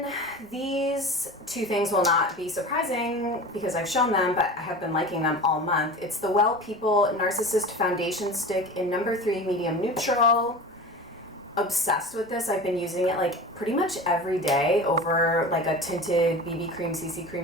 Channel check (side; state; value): right; noise; rumble, 29 dB below the sound